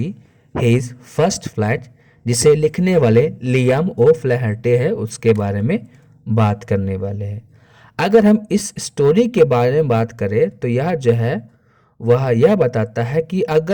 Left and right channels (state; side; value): identical; both; correlation 1.00